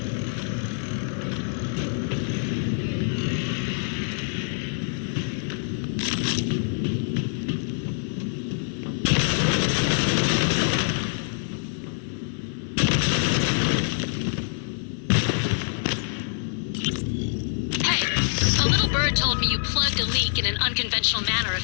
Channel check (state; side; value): silent; right; 61 dB below the other